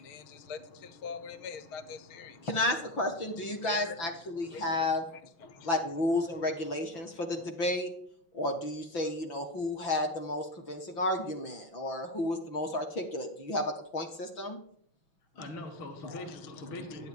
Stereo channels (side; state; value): right; late; 6.0 ms